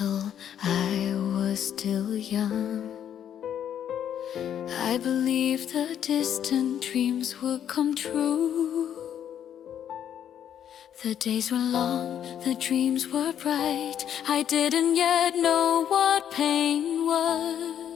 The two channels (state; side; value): quieter; right; 9.6 dB